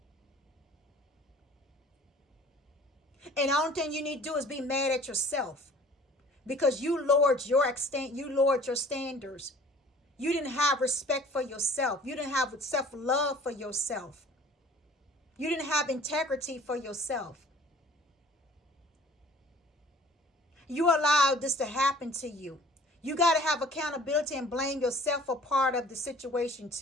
And the only thing you need to do is be mad at yourself. Because you lowered your standards. You didn't have respect for yourself. You didn't have self-love for yourself. You didn't have integrity for yourself. You allowed this to happen to you. You got to have accountability and blame yourself for part of the situation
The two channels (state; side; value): normal; both; correlation 0.50